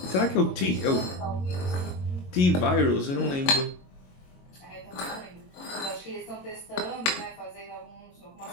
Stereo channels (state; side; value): late; right; 22 ms